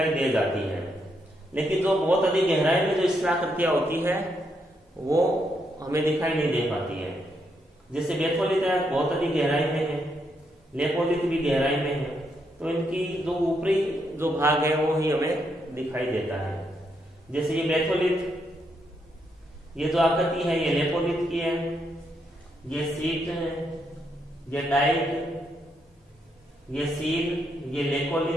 दे जाती है, लेकिन जो बहुत अधिक गहराई में जो स्थलाकृतियां होती है वो हमें दिखाई नहीं दे पाती है। जैसे बेथोलिथ है बहुत अधिक गहराई में है, लेपोलिथ भी गहराई में है, तो इनकी जो ऊपरी जो भाग है वो ही हमें दिखाई देता है। जैसे ये बेथोलिथ, ये जो आकृति है ये लेपोलिथ की है, ये सीट है, ये डाइट, ये सील, ये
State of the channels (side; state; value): both; normal; correlation 0.78